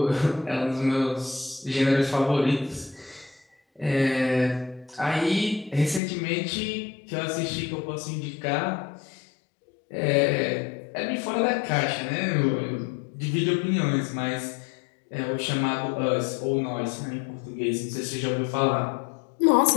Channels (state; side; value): drops out; right; at 6.0 s